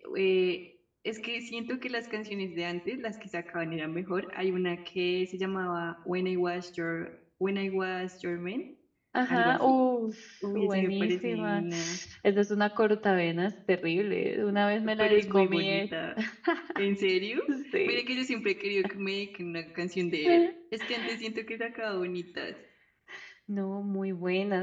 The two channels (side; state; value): both; identical; correlation 1.00